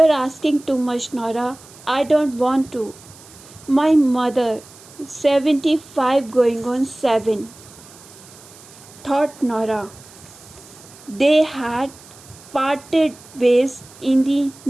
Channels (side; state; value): right; noise; hiss, 22 dB below the sound